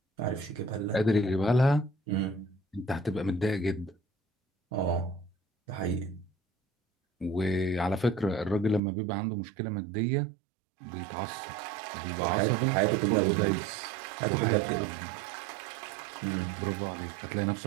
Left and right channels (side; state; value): left; drops out; at 8.8 s